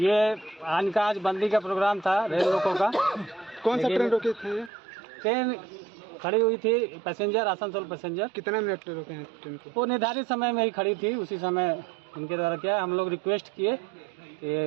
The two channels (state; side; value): drops out; left; at 4.7 s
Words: आज बंदी का प्रोग्राम था रेल रोको का। कौन सा ट्रेन रोके थे? ट्रेन खड़ी हुई थी, पैसेंजर आसनसोल पैसेंजर। कितने मिनट रोके हैं ट्रेन को? वो निर्धारित समय में ही खड़ी थी, उसी समय उनके द्वारा क्या हम लोग रिक्वेस्ट किए